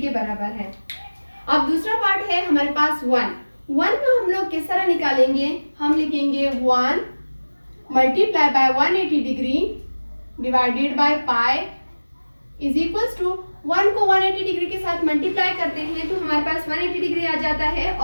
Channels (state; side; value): inverted; both; correlation -1.00